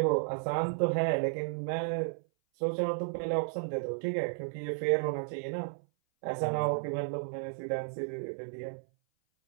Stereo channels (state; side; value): silent; left; 56 dB below the other